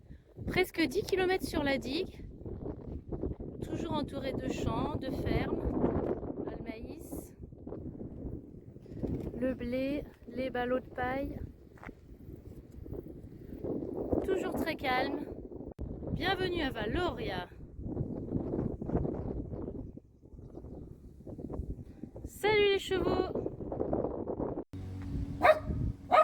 Presque 10 km sur la digue, toujours entouré de champs, de fermes, le maïs, le blé, les ballots de paille. Toujours très calme. Bienvenue à Valoria. Salut les chevaux!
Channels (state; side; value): identical; both; correlation 1.00